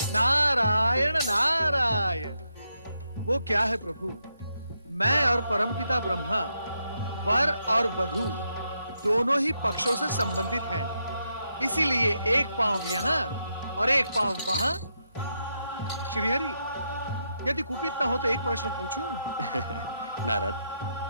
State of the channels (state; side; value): inverted; both; correlation -0.82